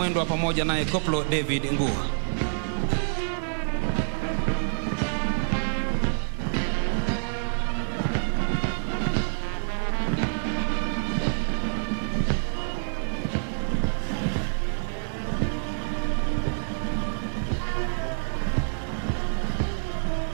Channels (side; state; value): left; silent; digital silence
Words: pamoja naye Koplo David Ngua.